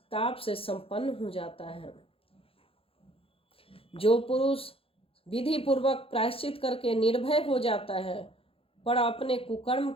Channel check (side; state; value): right; late; 0.27 ms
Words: से संपन्न हो जाता है। जो पुरुष विधि पूर्वक प्रायश्चित करके निर्भय हो जाता है पर अपने कुकर्म